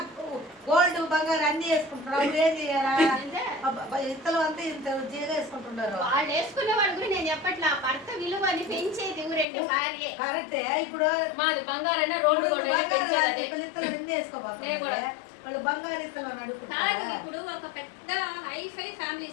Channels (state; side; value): drops out; right; at 9.5 s